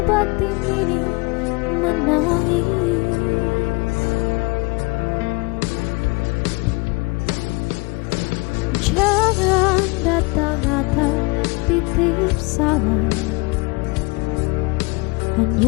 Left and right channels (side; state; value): right; quieter; 26.9 dB